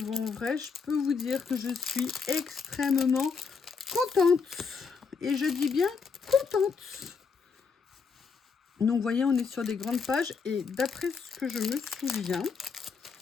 en vrai, je peux vous dire que je suis extrêmement contente. Et je dis bien contente. Donc, vous voyez, on est sur des grandes pages. Et d'après ce que je me souviens,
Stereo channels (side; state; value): right; quieter; 5.4 dB